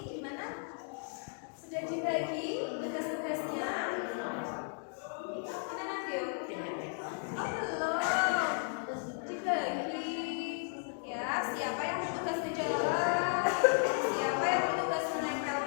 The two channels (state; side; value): silent; right; 55 dB below the other